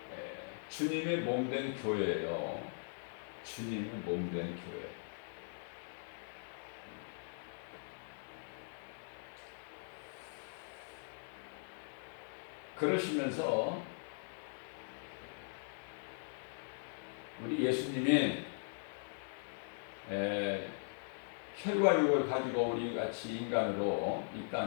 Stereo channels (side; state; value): right; silent; digital silence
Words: 주님의 몸된 교회예요. 주님의 몸된 교회. 그러시면서 우리 예수님이 혈과 육을 가지고 우리 같이 인간으로 이